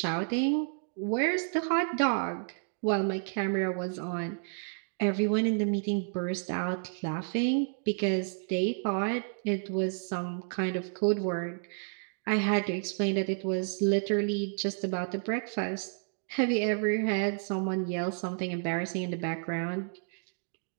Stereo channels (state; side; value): silent; left; digital silence